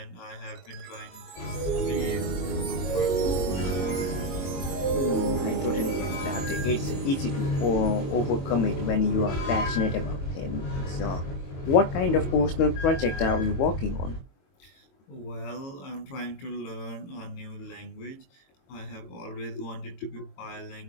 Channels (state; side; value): late; right; 22 ms